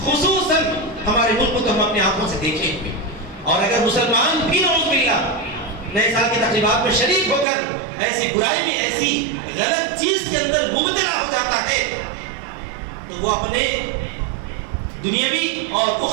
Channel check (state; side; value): drops out; left; at 7.5 s